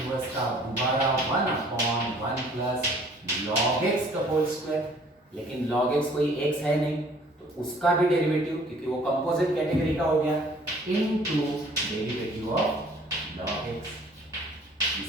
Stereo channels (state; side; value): normal; both; correlation 0.55